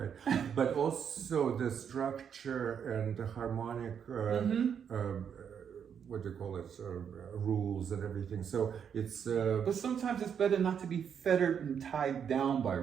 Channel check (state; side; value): quieter; left; 7.7 dB